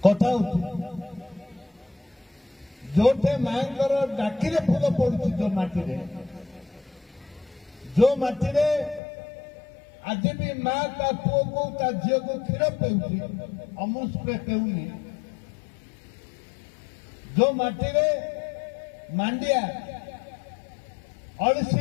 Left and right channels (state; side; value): drops out; right; at 9.0 s